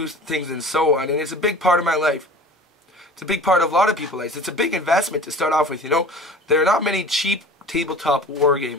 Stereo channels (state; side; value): normal; both; correlation 0.42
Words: things and so on. And it's a big part of my life. It's a big part of a lot of people's lives. It's a big investment to start off with, you know. There are not many cheap tabletop